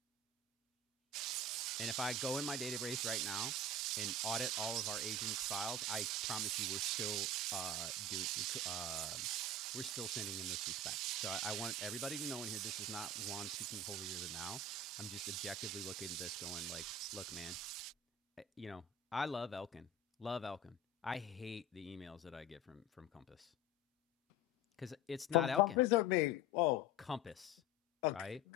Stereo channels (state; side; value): normal; both; correlation 0.30